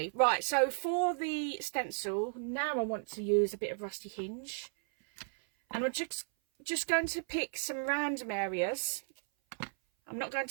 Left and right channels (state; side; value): silent; left; 55 dB below the other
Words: Right, so for the stencil, now I want to use a bit of Rusty Hinge, and I'm just going to pick some random areas. I'm not going